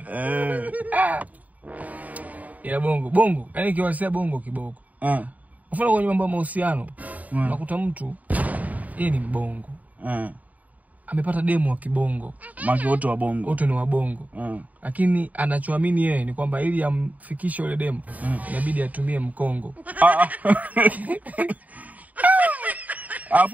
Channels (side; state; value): left; late; 0.074 ms